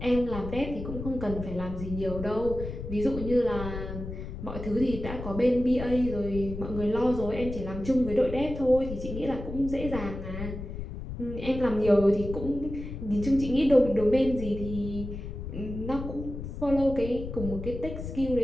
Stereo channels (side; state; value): left; noise; rumble, 8 dB below the sound